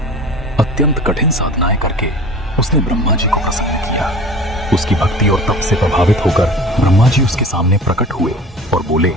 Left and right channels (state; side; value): normal; both; correlation 0.40